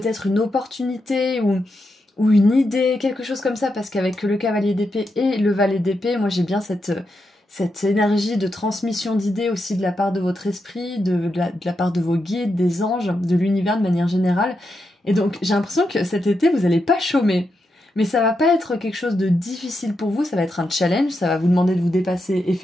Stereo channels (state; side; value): normal; both; correlation 0.85